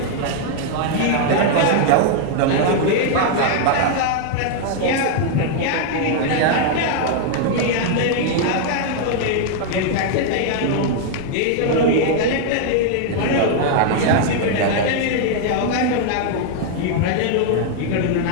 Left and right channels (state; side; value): different; both; correlation 0.00